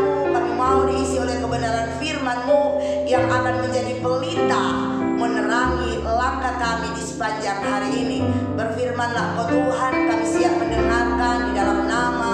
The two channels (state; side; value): identical; both; correlation 1.00